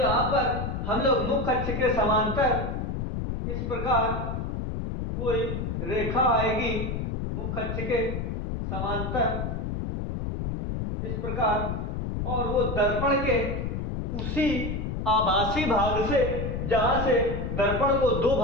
पर हम लोग मुख्य अक्ष के समांतर इस प्रकार कोई रेखा आएगी, मुख्य अक्ष के समांतर इस प्रकार, और वो दर्पण के उसी आभासी भाग से, जहां से दर्पण को दो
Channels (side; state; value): left; noise; rumble, 3 dB below the sound